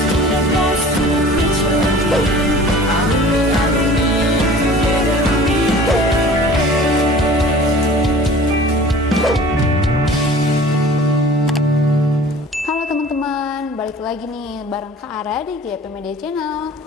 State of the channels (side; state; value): both; normal; correlation 0.45